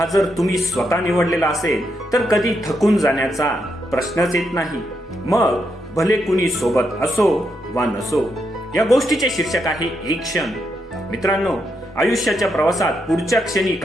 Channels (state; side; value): normal; both; correlation 0.81